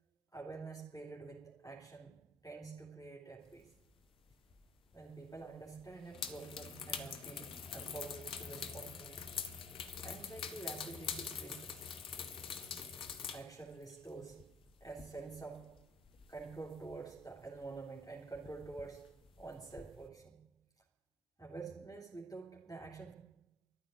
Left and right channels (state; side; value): normal; both; correlation 0.57